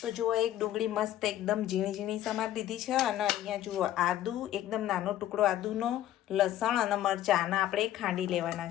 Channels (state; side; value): quieter; right; 12.7 dB